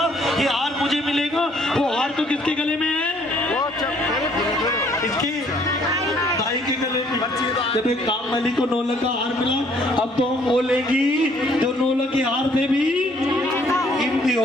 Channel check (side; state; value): both; normal; correlation 0.63